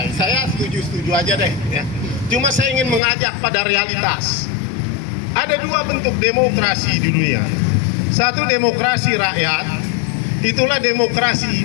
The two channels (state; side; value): drops out; right; at 3.0 s